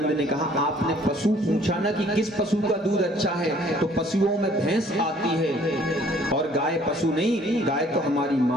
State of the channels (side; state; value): both; normal; correlation 0.58